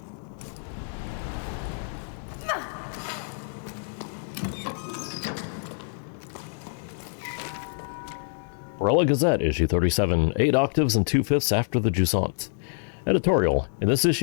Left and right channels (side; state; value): right; silent; 60 dB below the other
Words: Barella Gazette, issue 37, 8 octaves and 2/5 after the Jusant. Editorial. In this